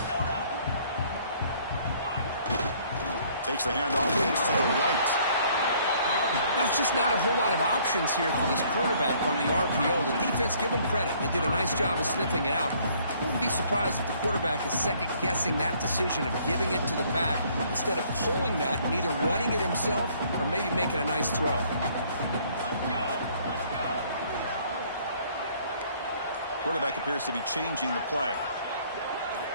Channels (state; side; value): inverted; both; correlation -0.61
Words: Takes the handoff. It's to the right. That's just not a whole lot of options here for this quarterback on the RPO. The defense, give them credit. They did a nice job of sniffing it out. I wouldn't be surprised if the quarterback is second-guessing that decision of giving it to the back instead of pulling that and either running it himself or maybe making a nice throw. Quarterback appears to be changing the play.